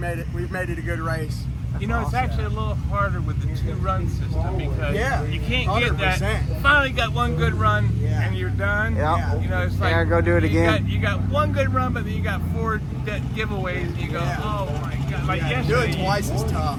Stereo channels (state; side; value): identical; both; correlation 1.00